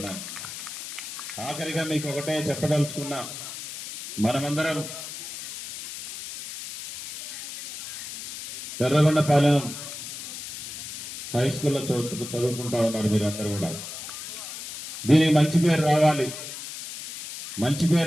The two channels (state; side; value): noise; left; hiss, 10 dB below the sound